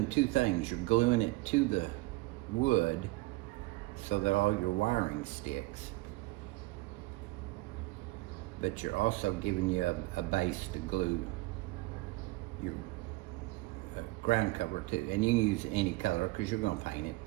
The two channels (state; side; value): quieter; left; 21.4 dB